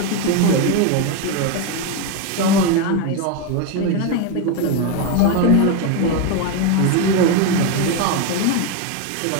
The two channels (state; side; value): different; both; correlation 0.02